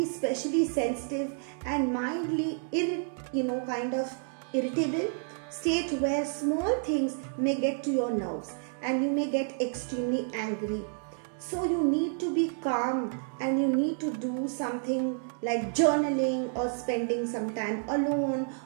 specially sensitive and mildly irritable state where small things may get to your nerves and you may get extremely angry. So you need to be calm, and you need to do something like journaling or spending some time alone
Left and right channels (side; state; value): left; silent; 58 dB below the other